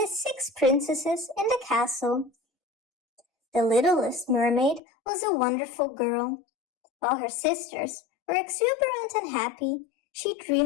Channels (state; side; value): drops out; right; at 4.8 s